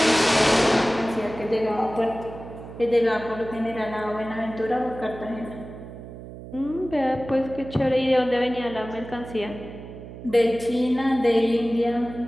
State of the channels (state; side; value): noise; right; hum, 13 dB below the sound